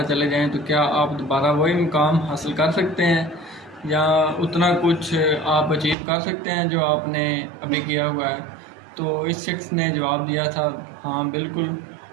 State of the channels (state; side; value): drops out; left; at 6.0 s